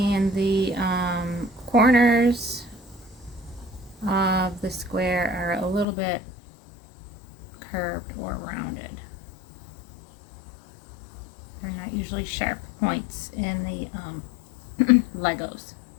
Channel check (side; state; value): right; drops out; at 5.9 s